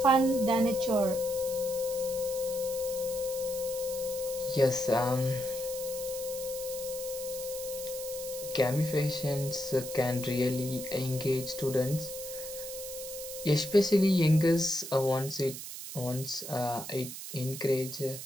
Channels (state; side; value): noise; right; hiss, 9 dB below the sound